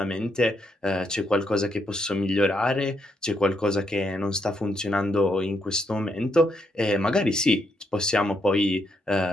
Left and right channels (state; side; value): normal; both; correlation 0.78